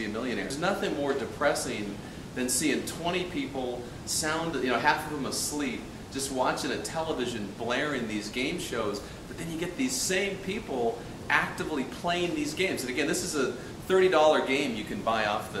a Millionaire. There's nothing more depressing than seeing 20 people half of them asleep, just watching a television blaring these game shows, but then you get these same people actively playing these games. And again, this is a $30 game you can buy off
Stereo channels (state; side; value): identical; both; correlation 1.00